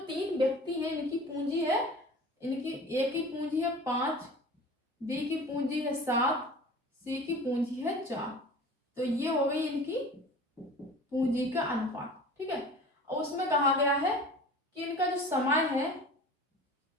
3 व्यक्ति हैं इनकी पूंजी है, इनकी A की पूंजी है 5, B की पूंजी है 7, C की पूंजी है 4। तो ये हो गई इनकी पूंजी का अनुपात, ठीक है। और उसमें कहा गया है कि इनका जो समय है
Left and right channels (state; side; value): normal; both; correlation 0.40